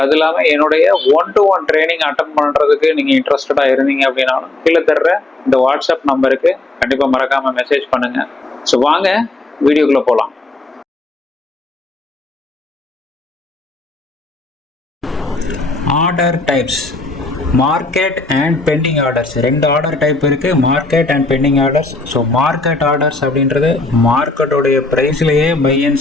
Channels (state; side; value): quieter; right; 3.0 dB